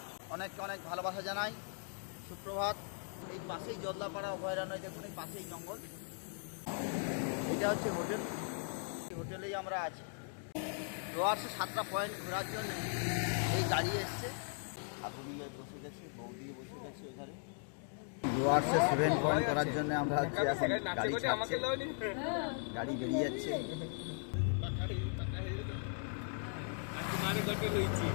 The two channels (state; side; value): silent; right; 52 dB below the other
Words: অনেক অনেক ভালোবাসা জানাই, সুপ্রভাত। এই পাশেই জলদাপাড়া অভয়ারণ্য, দেখুন এই পাশেই জঙ্গল, এটা হচ্ছে হোটেল। এই হোটেলেই আমরা আছি। ডুয়ার্সে 7টা পয়েন্ট ঘোরার জন্য এই গাড়ি এসছে। আগুনিয়ে বসে গেছে, বৌদিয়ে বসে গেছে ওখানে। ডুয়ার্সে 7 পয়েন্ট করার জন্য আমরা হচ্ছে এখন গাড়ি ছাড়ছে, গাড়ি বেরিয়ে যাচ্ছে।